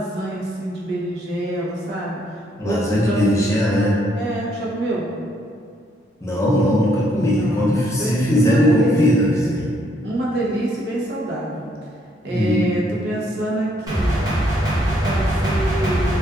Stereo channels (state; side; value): normal; both; correlation 0.71